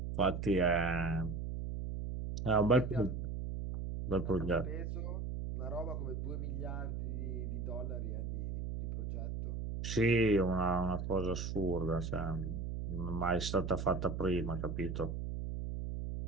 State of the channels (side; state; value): right; noise; hum, 4 dB below the sound